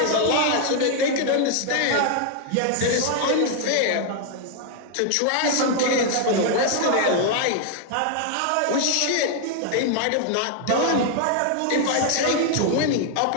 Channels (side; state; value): both; different; correlation 0.00